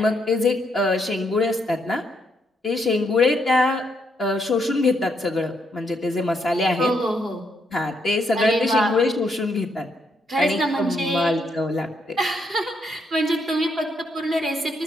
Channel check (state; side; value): normal; both; correlation 0.76